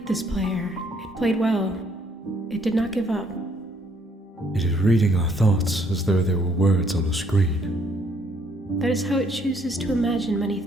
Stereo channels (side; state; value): both; normal; correlation 0.67